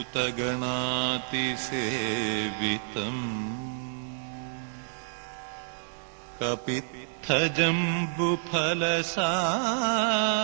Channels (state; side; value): silent; left; digital silence